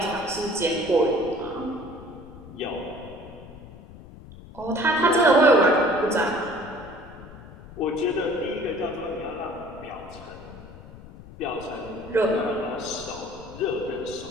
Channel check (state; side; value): noise; left; rumble, 17 dB below the sound